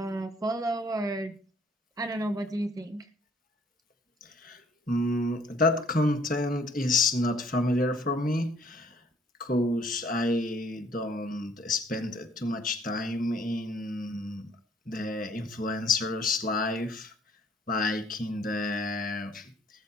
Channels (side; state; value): both; normal; correlation 0.61